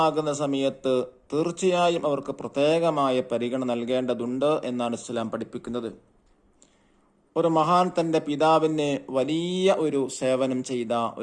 സമയത്ത് തീർച്ചയായും അവർക്ക് പ്രത്യേകമായ പരിഗണന നൽകേണ്ടതുണ്ട് എന്നാണ് ഇസ്ലാം പഠിപ്പിക്കുന്നത്. ഒരു മഹാൻ തൻ്റെ പിതാവിന് വലിയ ഒരു സേവനം ചെയ്ത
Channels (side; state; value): both; identical; correlation 1.00